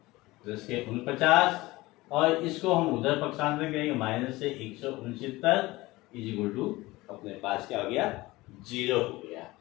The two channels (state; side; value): quieter; right; 20.0 dB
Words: प्लस के 49, और इसको हम उधर पक्षांतर करेंगे, माइनस से 169 इज इक्वल टू अपने पास क्या हो गया? 0 हो गया।